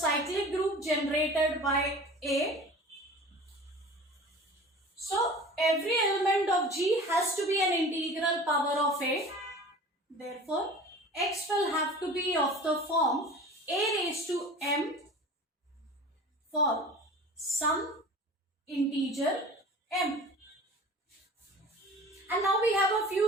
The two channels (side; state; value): both; normal; correlation 0.40